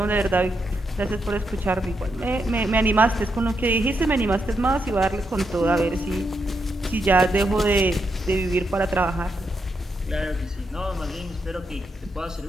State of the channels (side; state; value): both; normal; correlation 0.82